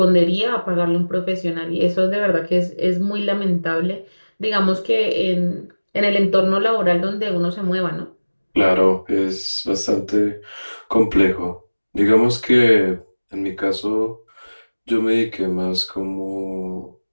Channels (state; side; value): inverted; both; correlation -1.00